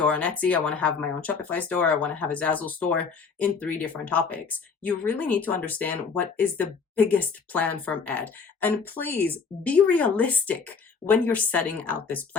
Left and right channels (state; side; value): quieter; right; 5.4 dB